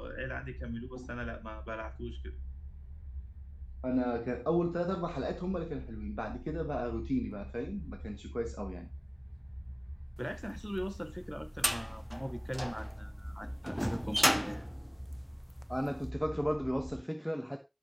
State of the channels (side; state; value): both; identical; correlation 1.00